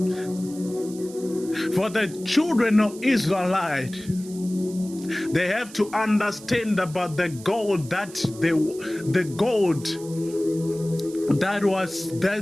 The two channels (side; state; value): right; noise; hiss, 18 dB below the sound